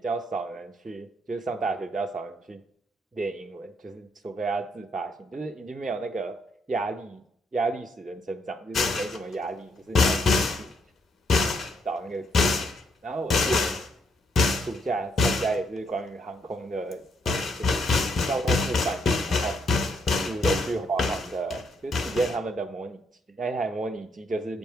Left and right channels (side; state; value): both; normal; correlation 0.74